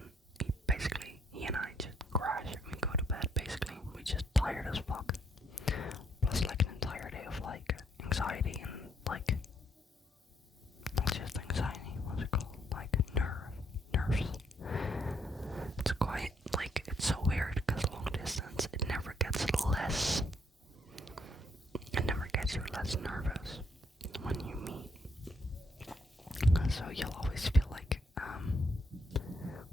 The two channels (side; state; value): both; normal; correlation 0.72